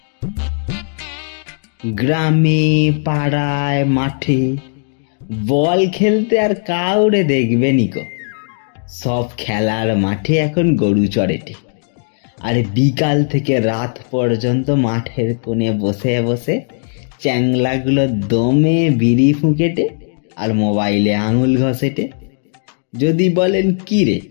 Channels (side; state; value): right; silent; 57 dB below the other